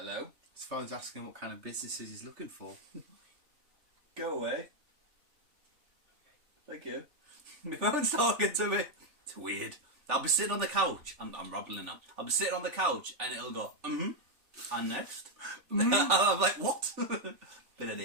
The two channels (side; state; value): left; late; 3.4 ms